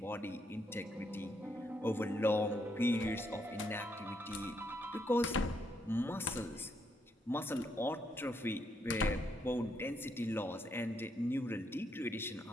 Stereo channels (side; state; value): both; normal; correlation 0.76